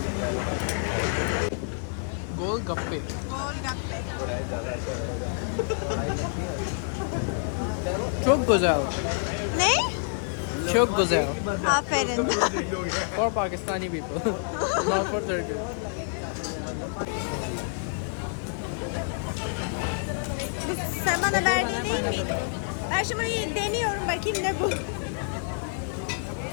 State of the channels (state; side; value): silent; right; digital silence